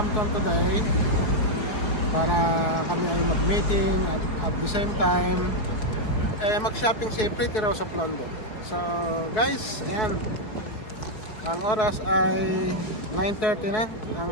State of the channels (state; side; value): late; right; 4.7 ms